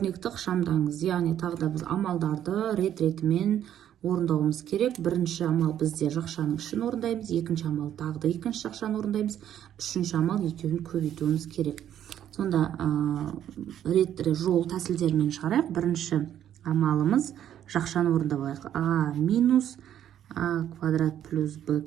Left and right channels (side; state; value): left; quieter; 10.6 dB